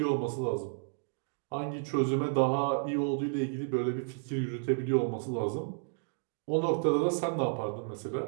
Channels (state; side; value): silent; left; digital silence